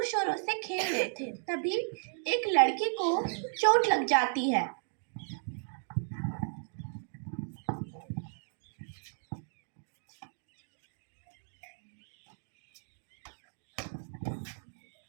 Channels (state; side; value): silent; left; digital silence